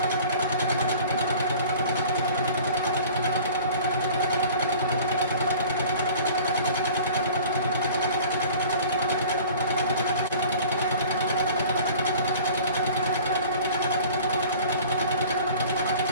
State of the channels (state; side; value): inverted; both; correlation -0.45